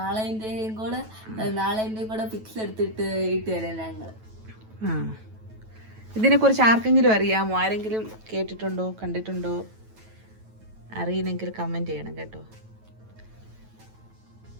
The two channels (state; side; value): late; left; 9.2 ms